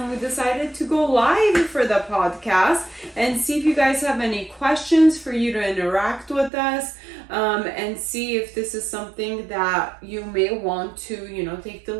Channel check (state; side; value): drops out; left; at 6.5 s